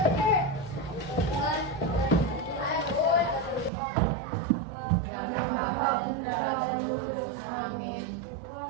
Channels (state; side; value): drops out; left; at 3.7 s